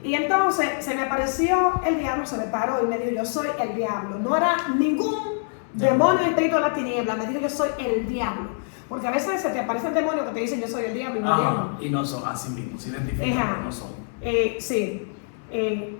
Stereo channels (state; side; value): silent; right; 62 dB below the other